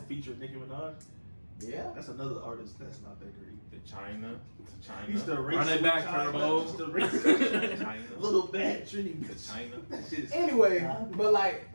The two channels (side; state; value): both; inverted; correlation -1.00